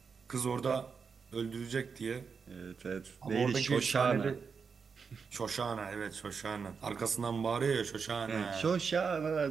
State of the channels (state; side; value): quieter; left; 5.7 dB